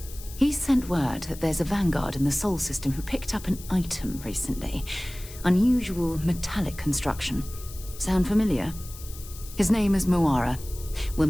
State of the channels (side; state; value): left; noise; hiss, 16 dB below the sound